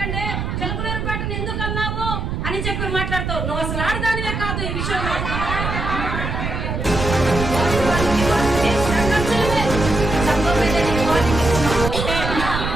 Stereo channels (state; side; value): noise; right; rumble, 3 dB below the sound